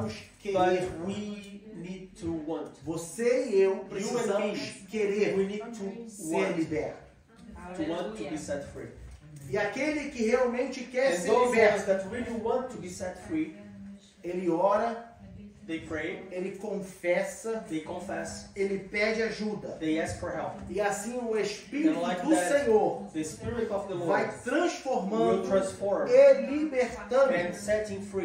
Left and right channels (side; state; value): both; identical; correlation 1.00